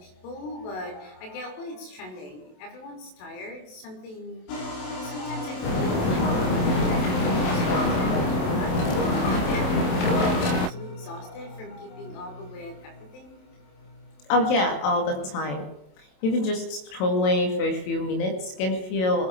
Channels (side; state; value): right; late; 27 ms